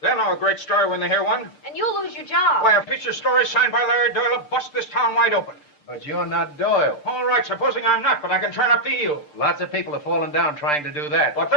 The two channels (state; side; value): late; right; 6.7 ms